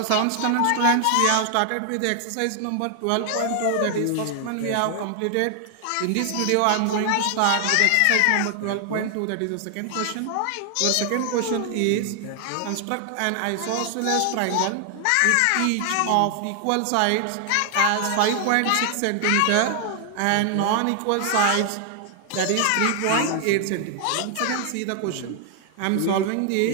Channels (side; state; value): both; different; correlation 0.00